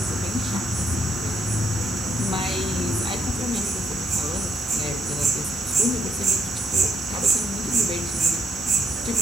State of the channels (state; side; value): normal; both; correlation 0.76